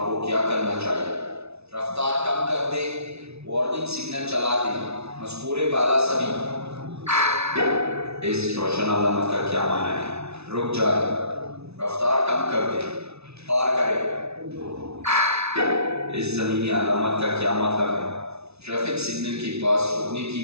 क्या करना चाहिए? रफ्तार कम कर दे, वार्निंग सिग्नल चला दे। मज़कूरे बाला सभी। इस रोशन अलामत का क्या माना है? रुक जाए, रफ्तार कम कर दे, पार करे। इस ज़मीनी अलामत का क्या मतलब है? ट्रैफिक सिग्नल के पास रुकने की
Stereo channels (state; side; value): late; left; 0.80 ms